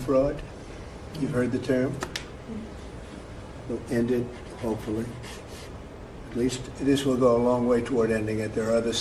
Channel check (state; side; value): identical; both; correlation 1.00